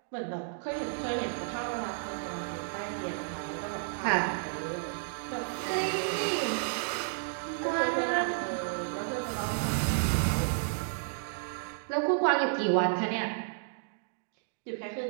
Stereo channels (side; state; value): left; silent; digital silence